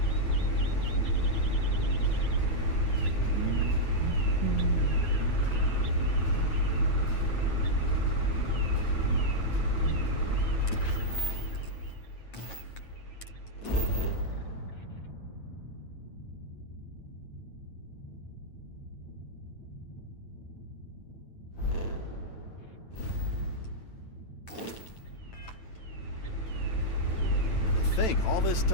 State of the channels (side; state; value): right; late; 9.0 ms